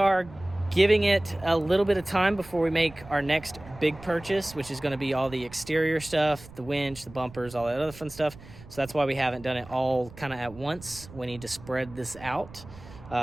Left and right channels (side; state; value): right; noise; rumble, 19 dB below the sound